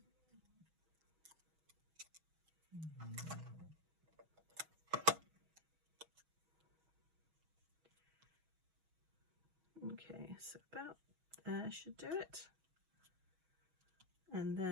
Okay, so about there should do it. And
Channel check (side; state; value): left; late; 6.2 ms